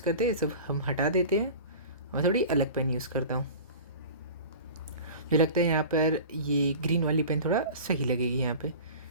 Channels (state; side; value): inverted; both; correlation -0.37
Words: करते हैं, सब हम हटा देते हैं, मैं थोड़ी अलग पेन यूज़ करता हूँ। मुझे लगता है यहाँ पर ये ग्रीन वाली पेन थोड़ा सही लगेगी यहाँ पे।